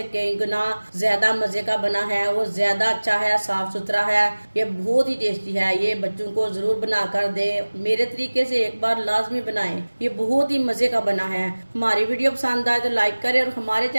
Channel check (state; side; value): inverted; both; correlation -1.00